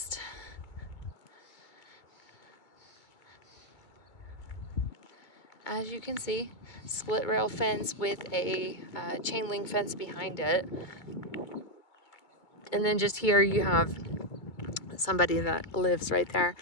As you can see, split rail fence with a chain link fence behind it. And then just here you have somebody that lives right there,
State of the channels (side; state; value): right; late; 2.2 ms